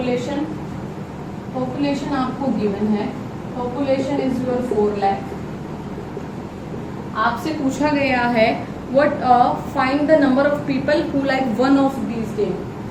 Population आपको गिवन है, पॉपुलेशन इज योर 4 लाख. आपसे पूछा गया है what find the number of people who like one of these game.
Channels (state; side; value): identical; both; correlation 1.00